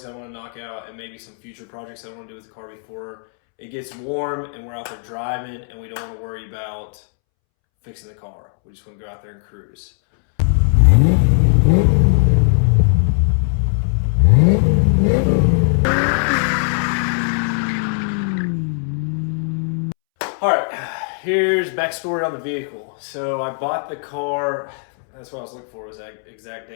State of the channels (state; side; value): silent; right; 66 dB below the other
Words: I want to knock out, and maybe some future projects I want to do with the car before it gets warm and we're out there driving and we don't want to worry about fixing the car. We just want to go out there and cruise. All right, here's backstory on the vehicle. So I bought the car, that's what I was looking for, was that exact